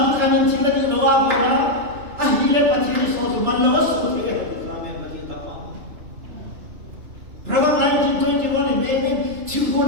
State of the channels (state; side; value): late; left; 2.9 ms